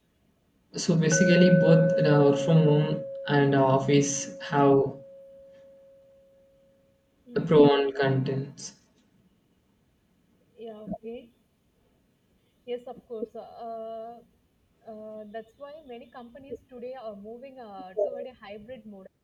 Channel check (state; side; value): identical; both; correlation 1.00